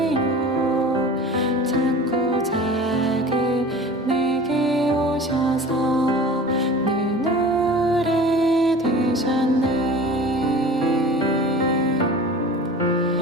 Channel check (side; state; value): both; normal; correlation 0.39